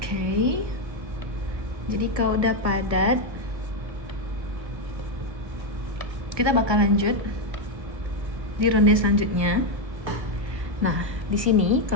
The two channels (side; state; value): left; late; 1.4 ms